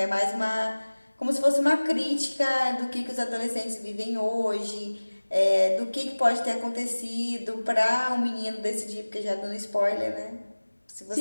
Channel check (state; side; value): inverted; both; correlation -1.00